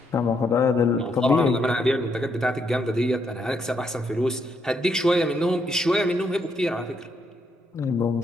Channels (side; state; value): both; normal; correlation 0.76